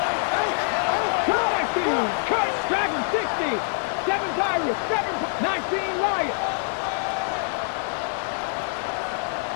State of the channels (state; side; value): silent; right; 62 dB below the other